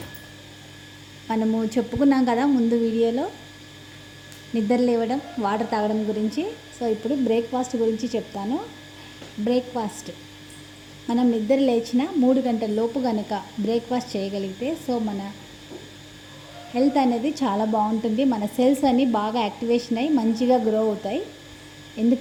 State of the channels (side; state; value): both; identical; correlation 1.00